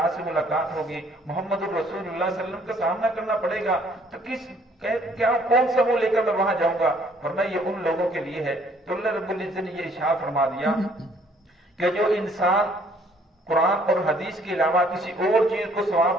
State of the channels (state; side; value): normal; both; correlation 0.62